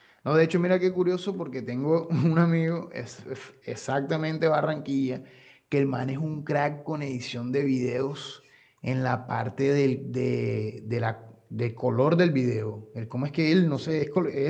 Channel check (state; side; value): identical; both; correlation 1.00